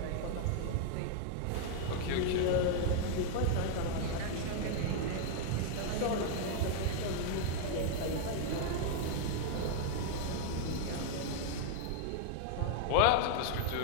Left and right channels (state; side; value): different; both; correlation 0.00